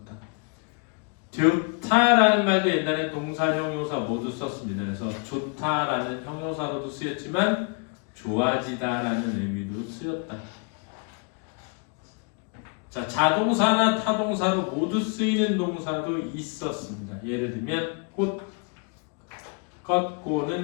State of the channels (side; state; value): right; quieter; 38.4 dB